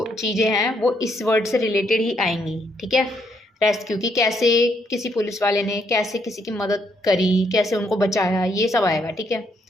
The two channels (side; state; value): both; normal; correlation 0.73